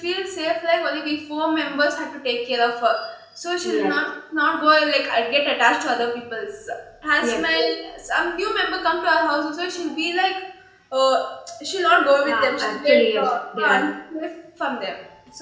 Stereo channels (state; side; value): identical; both; correlation 1.00